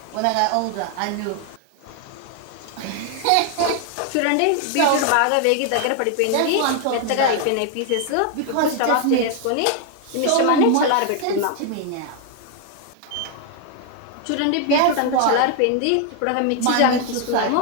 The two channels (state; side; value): different; both; correlation 0.00